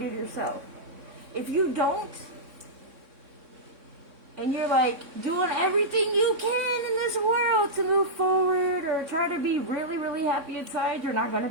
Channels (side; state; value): left; late; 3.6 ms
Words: yourself. If you don't, and you're like doing everything you can in this world to move forward or try to be really, really happy inside, you're not going to